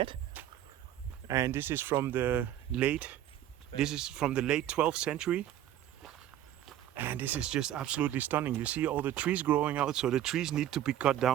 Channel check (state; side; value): quieter; left; 11.8 dB